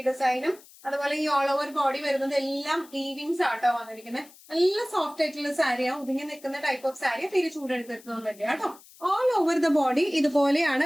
ഡിസൈനും അതുപോലെ ഈ ഓൾ ഓവർ ബോഡി വരുന്നത് എല്ലാം വീവിങ്സ് ആട്ടോ വന്നിരിക്കുന്നത്. നല്ല സോഫ്റ്റ് ആയിട്ടുള്ള സാരിയാണ്, ഒതുങ്ങി നിൽക്കുന്ന ടൈപ്പ് ഓഫ് സാരി, തിരി ചൂടെടുത്തിട്ടൊന്നുമില്ല കേട്ടോ. ഓൾ ഓവർ ദ ബോഡി ഇതുപോലെയാണ്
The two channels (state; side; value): noise; left; hiss, 23 dB below the sound